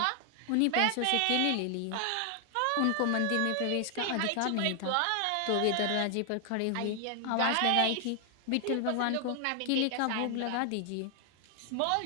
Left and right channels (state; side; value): different; both; correlation 0.00